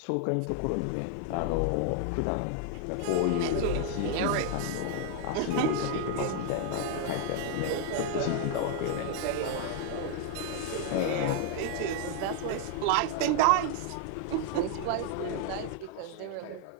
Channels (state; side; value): different; both; correlation 0.00